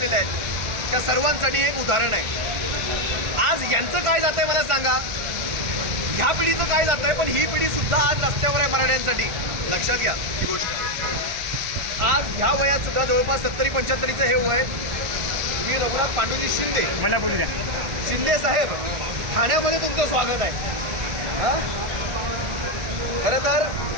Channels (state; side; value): late; left; 1.4 ms